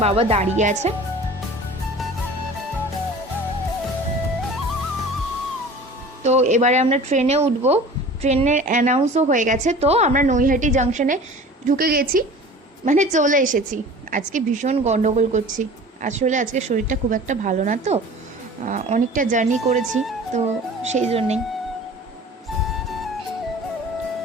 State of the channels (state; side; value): normal; both; correlation 0.42